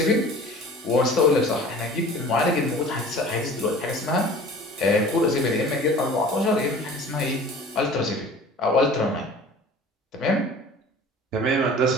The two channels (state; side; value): normal; both; correlation 0.44